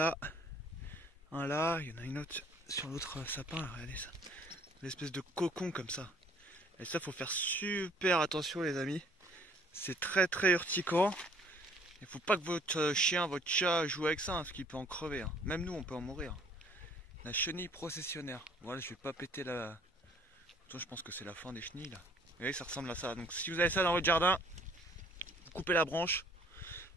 un là, il y en a une autre sur l'autre sapin là, regardez ça. L'espèce de cocon comme ça. Et ça, faut faire super attention les amis. C'est très urticant. Il faut pas que votre chien, votre chat joue avec ça, hein, parce qu'il peut en crever. Hein. Même nous, on peut en mourir. La chenille processionnaire. Voilà, je vais pas péter la... Je pense que c'est la fin des chenilles là. Vous voyez, ça ressemble à ça. Donc si vous avez ça dans votre jardin, vous coupez la branche,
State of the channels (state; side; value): normal; both; correlation 0.58